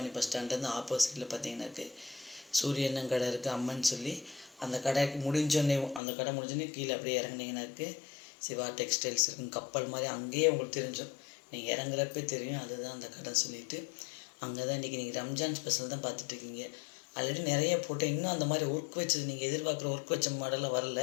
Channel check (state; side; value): drops out; right; at 6.0 s